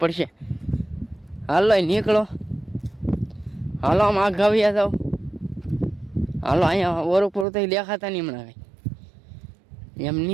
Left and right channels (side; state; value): left; drops out; at 7.5 s